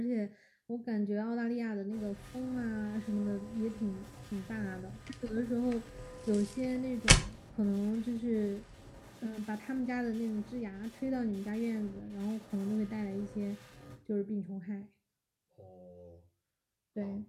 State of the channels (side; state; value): both; identical; correlation 1.00